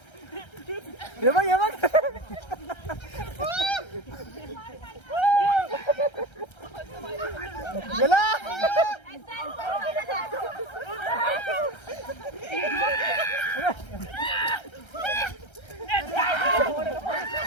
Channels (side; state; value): right; late; 1.3 ms